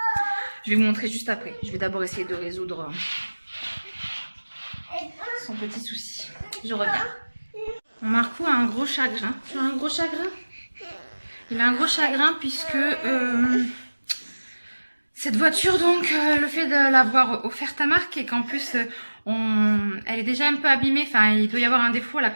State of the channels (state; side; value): inverted; both; correlation -1.00